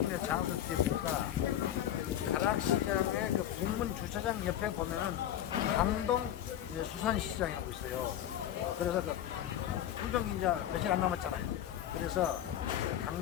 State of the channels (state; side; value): quieter; right; 11.3 dB